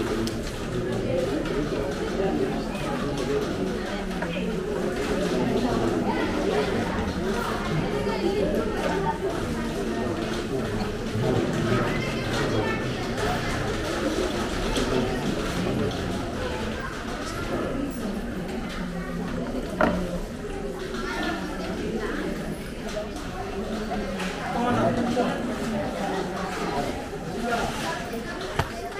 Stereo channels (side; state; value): both; identical; correlation 1.00